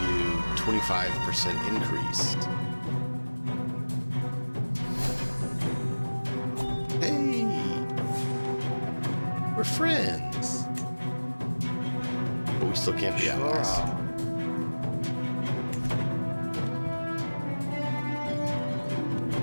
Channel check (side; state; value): both; inverted; correlation -1.00